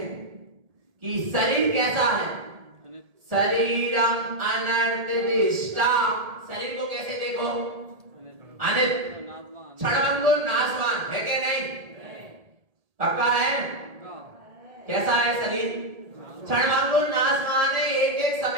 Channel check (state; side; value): late; left; 1.7 ms